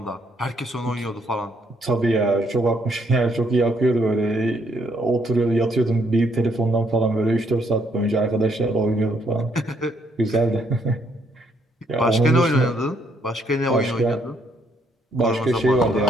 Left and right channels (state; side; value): normal; both; correlation 0.71